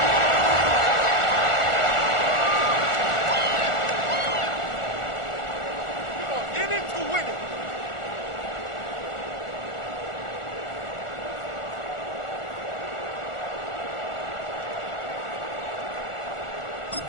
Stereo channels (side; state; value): right; late; 1.4 ms